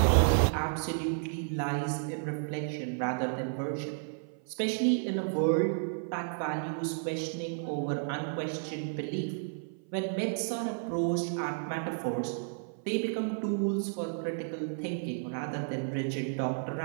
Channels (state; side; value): silent; left; 56 dB below the other